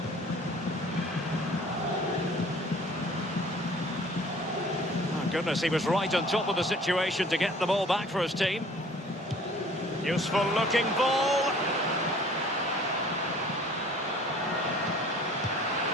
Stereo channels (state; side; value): normal; both; correlation 0.51